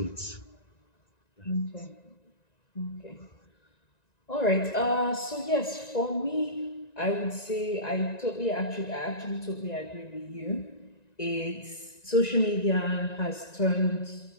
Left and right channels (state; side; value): late; right; 1.9 ms